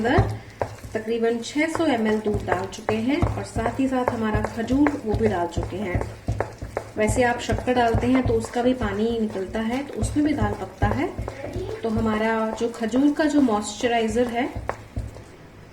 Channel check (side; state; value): both; identical; correlation 1.00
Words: तकरीबन 600 ml दूध डाल चुके हैं और साथ ही साथ हमारा खजूर वो भी डाल चुके हैं। वैसे आप शक्कर डालते हैं तो उसका भी पानी निकलता है, तो उसमें भी दाल पकता है। तो हमारा जो खजूर का जो मॉइस्चराइजर है